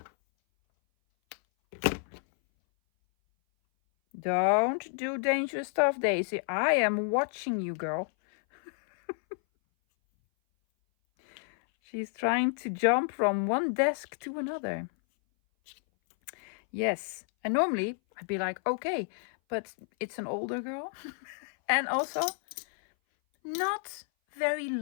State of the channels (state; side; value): silent; right; 58 dB below the other